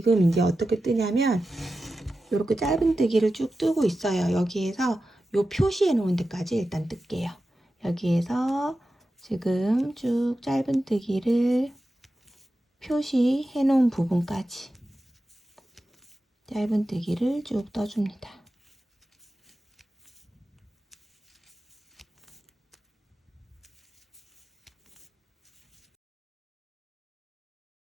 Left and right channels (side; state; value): both; normal; correlation 0.92